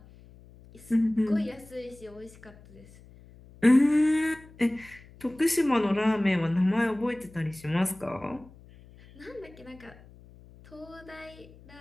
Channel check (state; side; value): noise; left; hum, 23 dB below the sound